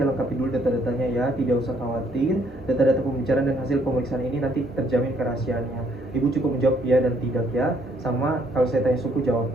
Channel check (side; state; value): both; normal; correlation 0.67